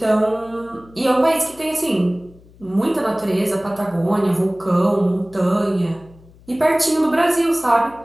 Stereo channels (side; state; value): left; noise; hum, 25 dB below the sound